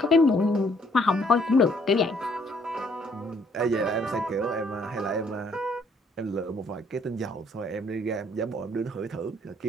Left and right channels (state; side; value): normal; both; correlation 0.65